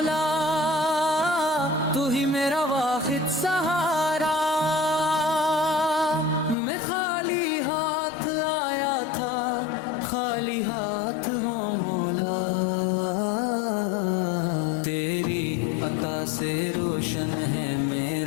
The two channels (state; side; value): drops out; right; at 6.6 s